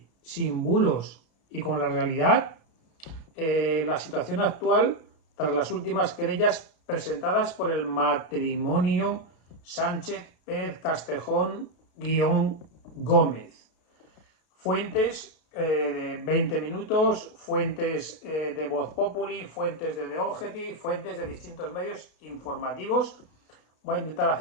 sin bulos y con la realidad, la situación actual tras las últimas querellas presentadas por el matrimonio Sánchez Pérez Castejón-Gómez. Fuentes de 20 minutos, fuentes de Voz Populi, fuentes de The Objective, fuentes de distintos medios informativos. Voy a intentar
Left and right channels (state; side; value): late; right; 32 ms